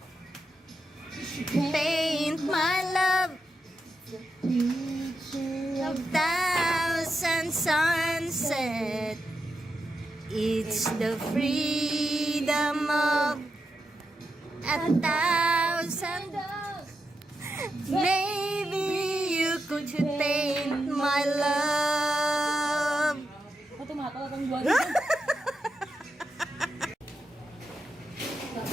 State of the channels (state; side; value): normal; both; correlation 0.86